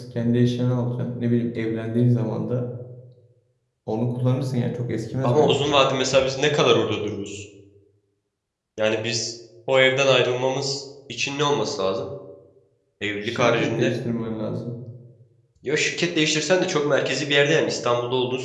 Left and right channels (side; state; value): both; identical; correlation 1.00